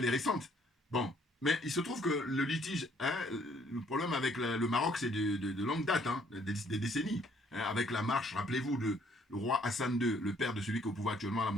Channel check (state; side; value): normal; both; correlation 0.64